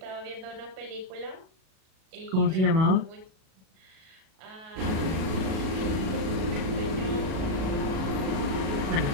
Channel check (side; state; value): left; late; 37 ms